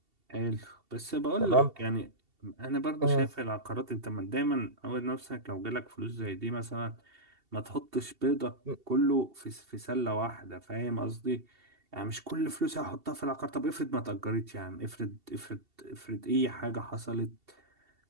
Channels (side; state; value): left; late; 2.7 ms